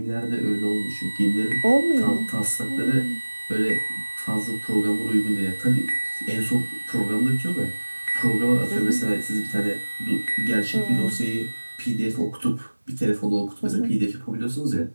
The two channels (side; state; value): both; inverted; correlation -1.00